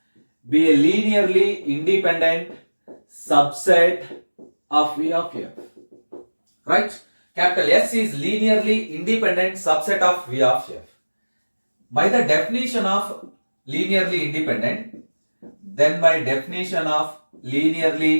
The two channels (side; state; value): both; inverted; correlation -1.00